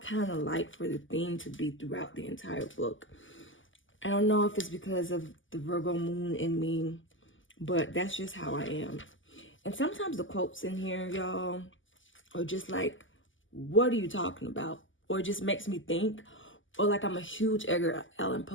of like for the theme to be throughout the entire book. I don't know if it's because of the Virgo moon in me, but that's just how I am. And sometimes the quotes in here, y'all, are just like, what are you talking about? Or it just makes me think. Or like, I'm a huge Edgar Allan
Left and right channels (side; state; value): right; late; 0.57 ms